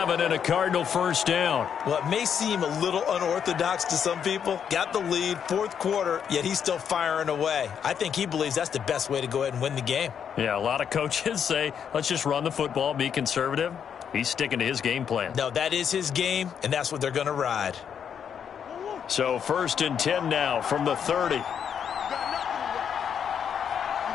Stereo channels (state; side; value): quieter; right; 7.9 dB